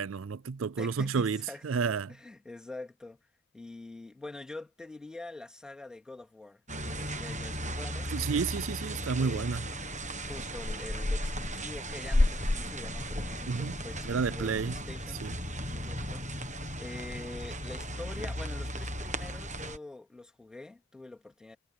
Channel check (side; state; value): both; normal; correlation 0.59